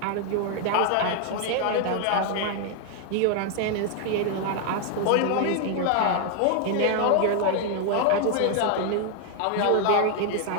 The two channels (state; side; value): different; both; correlation 0.00